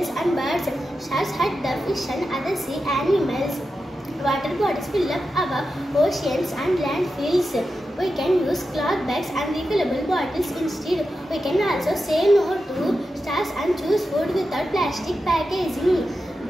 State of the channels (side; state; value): both; normal; correlation 0.90